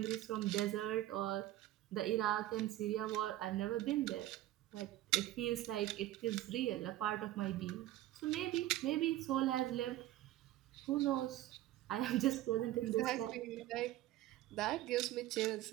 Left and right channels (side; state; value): left; quieter; 14.9 dB